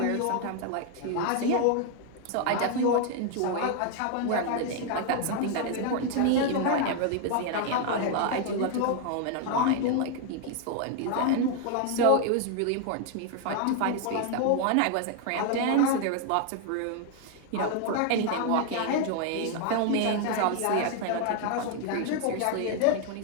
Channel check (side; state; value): both; different; correlation 0.00